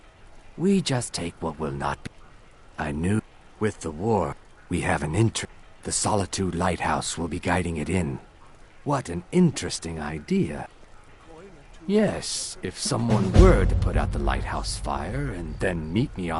We just take what will not be. I knew with the war, we have an interest. The Solitude Lighthouse will be guiding it in. What an interesting idea. Yes, if someone were to put out the lighthouse fire and then meet me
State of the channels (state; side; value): identical; both; correlation 1.00